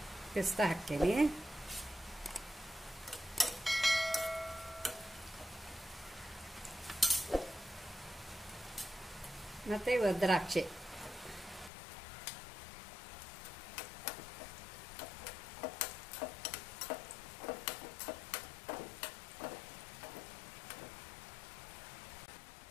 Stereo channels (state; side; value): drops out; right; at 11.7 s